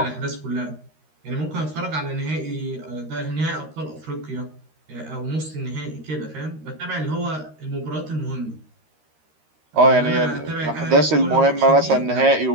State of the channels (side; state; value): left; late; 13 ms